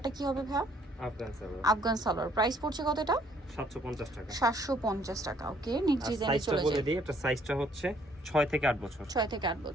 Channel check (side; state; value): both; normal; correlation 0.64